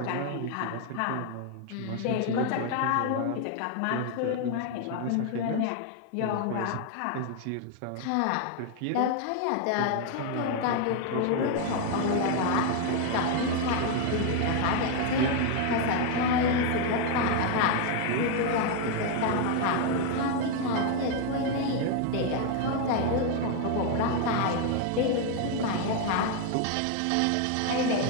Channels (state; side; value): different; both; correlation 0.01